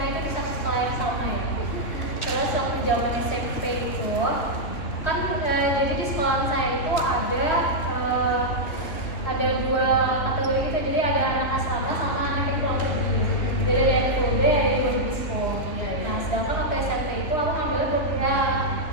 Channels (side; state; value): right; late; 3.0 ms